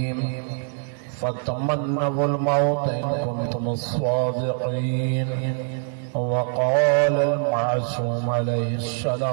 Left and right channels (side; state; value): left; silent; 63 dB below the other